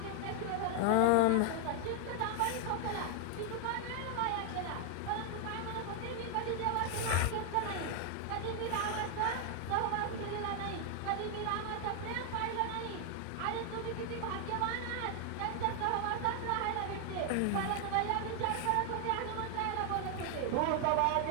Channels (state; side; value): different; both; correlation 0.00